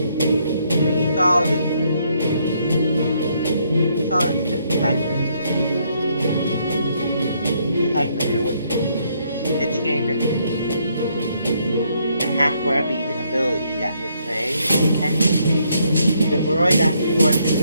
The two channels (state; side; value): inverted; both; correlation -0.72